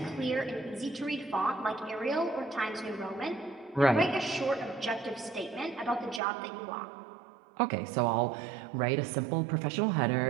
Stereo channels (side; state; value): left; drops out; at 6.2 s